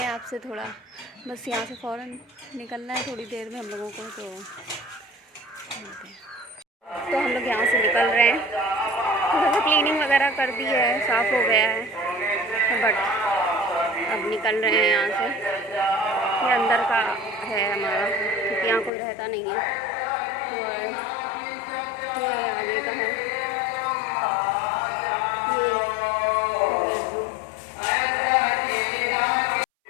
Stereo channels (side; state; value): right; drops out; at 18.9 s